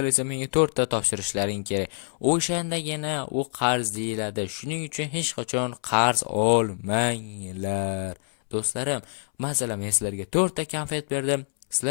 esa menga 4 ta topshirishlaring kerak. O'shandagina u qarz deyiladi. Shuning uchun hech qachon qarz olmanglar. Do'stlarim, masalan, men sizlarga 4 ta konfet berdim,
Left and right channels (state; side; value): silent; right; 61 dB below the other